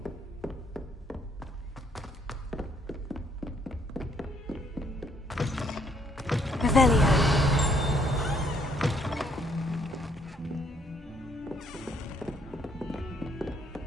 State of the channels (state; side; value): normal; both; correlation 0.68